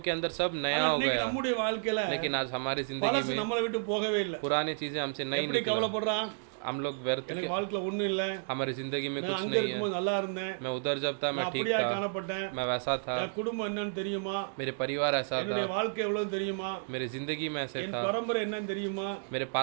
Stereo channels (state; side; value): silent; left; digital silence